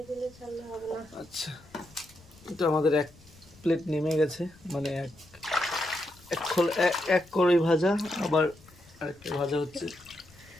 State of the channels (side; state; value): left; noise; rumble, 25 dB below the sound